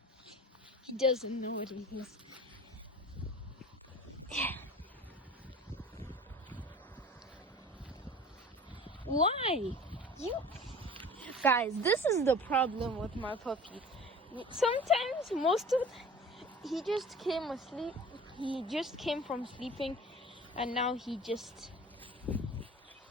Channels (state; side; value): normal; both; correlation 0.41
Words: He doesn't know what it is. Why? You guys, this is the problem with my puppy. Sometimes he just came asleep. He just came from sleeping and now he just